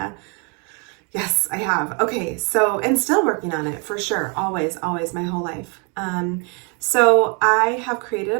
Yes, I have. Okay, and still working on it for sure. Always, my whole life. So I have created a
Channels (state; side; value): quieter; left; 35.3 dB